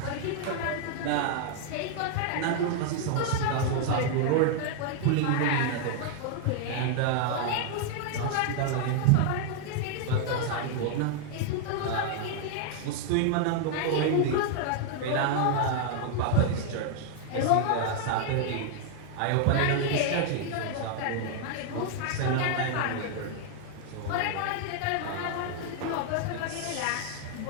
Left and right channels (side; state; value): both; different; correlation 0.00